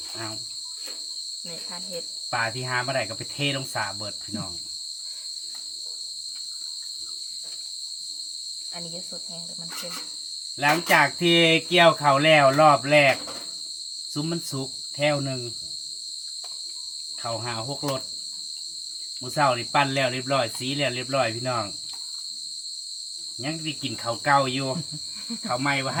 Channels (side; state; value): both; identical; correlation 1.00